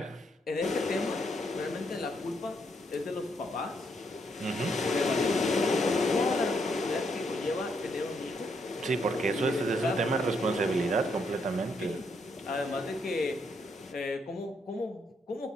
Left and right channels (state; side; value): normal; both; correlation 0.75